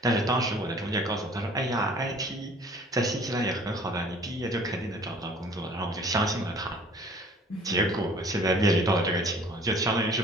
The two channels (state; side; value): normal; both; correlation 0.51